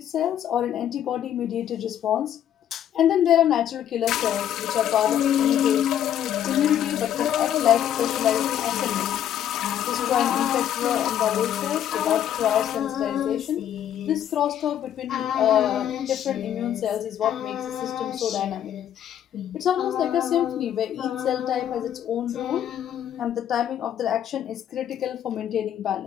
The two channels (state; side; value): quieter; right; 10.4 dB